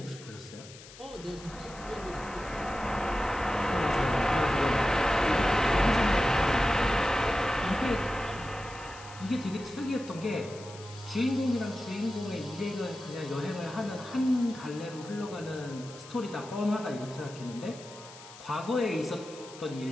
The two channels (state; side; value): noise; left; hiss, 18 dB below the sound